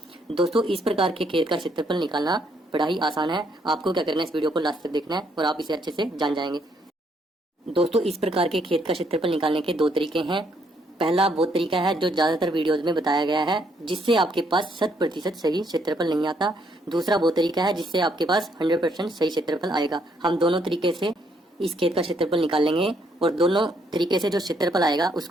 दोस्तों इस प्रकार के खेत का क्षेत्रफल निकालना बड़ा ही आसान है। आपको क्या करना है, इस वीडियो को लास्ट तक देखना है और आप इसे अच्छे से जान जाएंगे। दोस्तों इस प्रकार के खेत का क्षेत्रफल निकालने के दो तरीके हैं। पहला वो तरीका है जो ज्यादातर वीडियोज में बताया गया है, जिससे आपके पास 100% सही क्षेत्रफल नहीं आता। दूसरा वो तरीका है जिससे आपके पास 100% सही क्षेत्रफल आएगा। हम दोनों तरीके से इस खेत का क्षेत्रफल निकाल लेंगे और दोनों तरीके से जो क्षेत्रफल आएगा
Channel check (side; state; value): both; normal; correlation 0.71